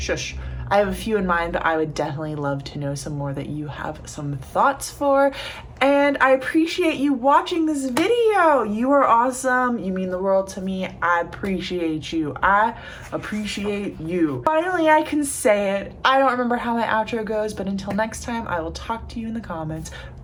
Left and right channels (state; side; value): identical; both; correlation 1.00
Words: I have a few in mind, but I would definitely love to know some more that you have some thoughts for. And I appreciate you watching this video. You are awesome. You mean the world to me. I appreciate you. I appreciate you. Finally, I can say it. I don't remember how my outro goes, but until next time, I will talk to you in the comments.